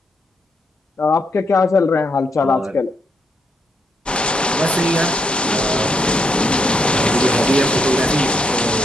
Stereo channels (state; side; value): normal; both; correlation 0.77